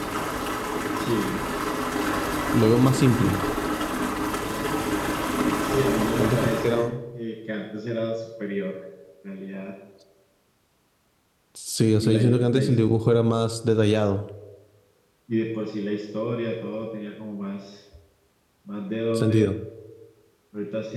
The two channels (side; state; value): both; identical; correlation 1.00